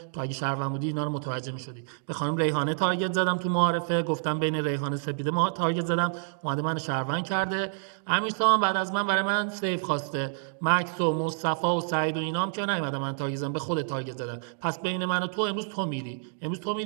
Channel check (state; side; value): silent; left; digital silence